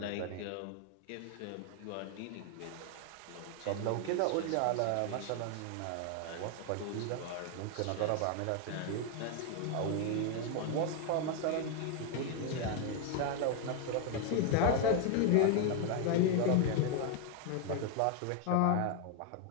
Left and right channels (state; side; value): different; both; correlation 0.01